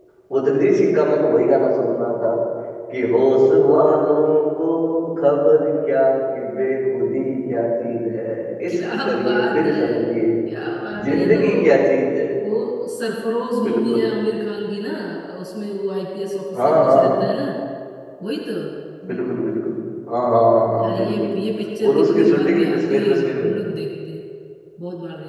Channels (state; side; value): identical; both; correlation 1.00